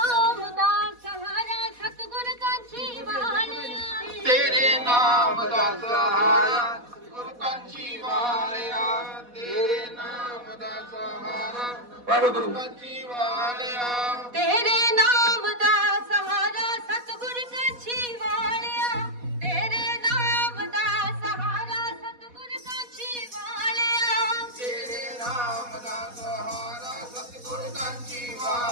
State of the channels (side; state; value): left; late; 4.1 ms